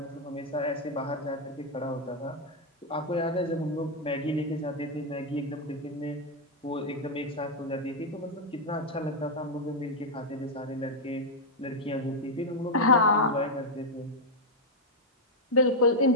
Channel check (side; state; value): both; normal; correlation 0.00